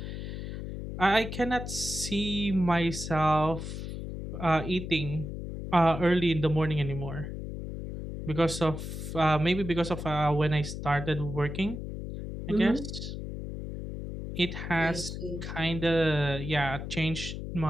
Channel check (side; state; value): left; noise; hum, 7 dB below the sound